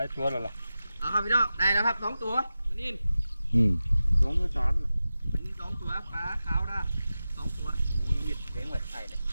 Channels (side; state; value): both; inverted; correlation -0.94